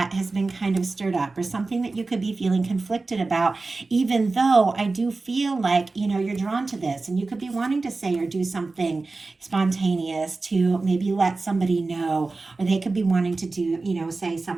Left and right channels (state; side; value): quieter; left; 3.6 dB